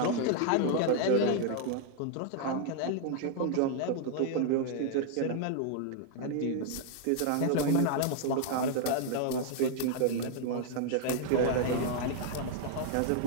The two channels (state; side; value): different; both; correlation 0.00